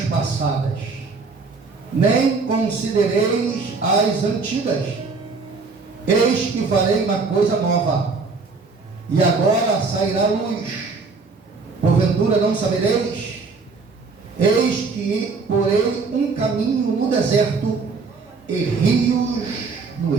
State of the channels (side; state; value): left; quieter; 4.4 dB